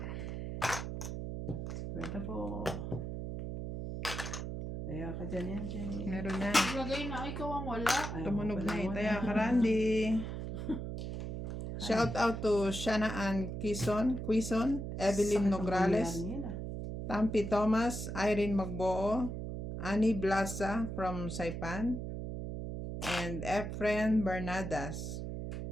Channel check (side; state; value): right; noise; hum, 5 dB below the sound